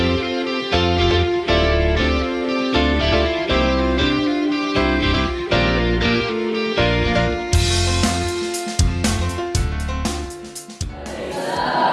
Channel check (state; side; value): identical; both; correlation 1.00